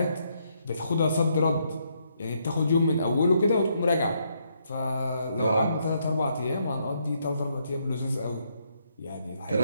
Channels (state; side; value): inverted; both; correlation -0.75